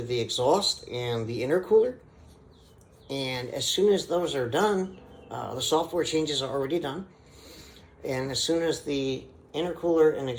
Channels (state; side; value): identical; both; correlation 1.00